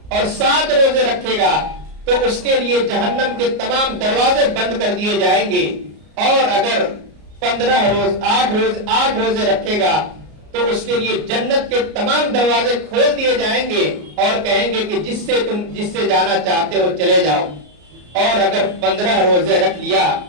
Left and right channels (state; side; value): late; left; 33 ms